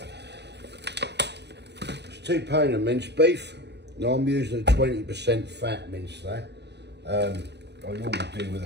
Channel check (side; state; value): left; late; 0.50 ms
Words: 2 pounds of minced beef. Now I'm using a 20% fat mince there. I normally do with